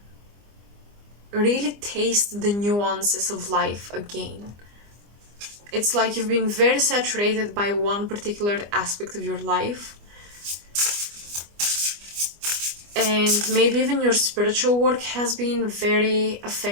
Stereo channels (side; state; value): left; late; 25 ms